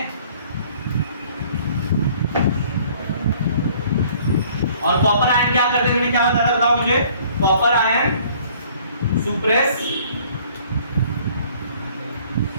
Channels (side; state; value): both; inverted; correlation -0.56